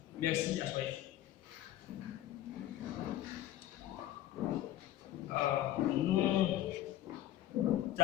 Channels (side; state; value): right; quieter; 13.2 dB